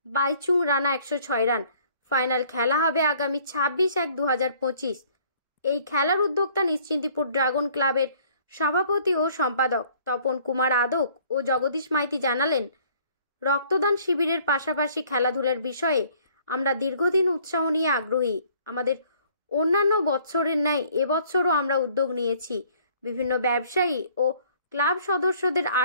বাইচুং রানা 106 রান। ফাইনাল খেলা হবে আগামী 26/1/2025। এই খেলার উদ্যোক্তা নিশ্চিন্তিপুর ড্রাগন ক্লাবের সভাপতি ও সম্পাদক তপন কুমার আদক ও জগদীশ মাইতি জানালেন, রক্তদান শিবিরের পাশাপাশি খেলাধুলার বিষয়ে আমরা দীর্ঘদিন উৎসাহ নিয়ে আগ্রহী। আমাদের অন্যান্য বছরের ন্যায় এবছরও আমরা উদ্যোগ নিয়েছি। বিভিন্ন ব্যবসায়ী ও ক্লাব সদস্যদের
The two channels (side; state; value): both; inverted; correlation -0.58